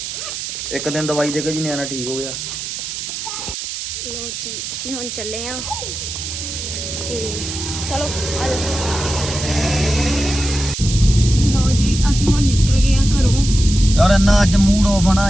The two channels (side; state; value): right; noise; hiss, 6 dB below the sound